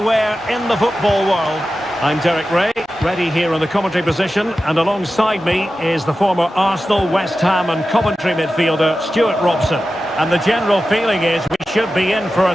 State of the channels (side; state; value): both; normal; correlation 0.93